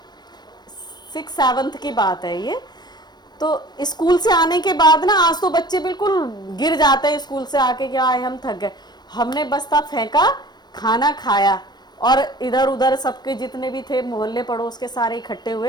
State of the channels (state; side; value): late; right; 0.20 ms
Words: 6-7 की बात है ये, तो स्कूल से आने के बाद ना, आज तो बच्चे बिल्कुल गिर जाते हैं स्कूल से आके, क्या आए हम थक गए, हमने बस्ता फेंका, खाना खाया, और इधर उधर सबके जितने भी थे मोहल्ले पड़ोस के सारे इकट्ठे